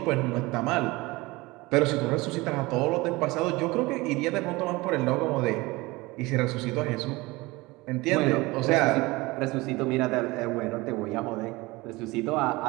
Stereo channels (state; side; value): quieter; left; 22.1 dB